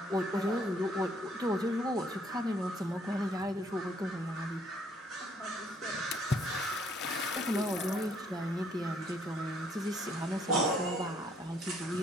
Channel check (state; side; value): normal; both; correlation 0.65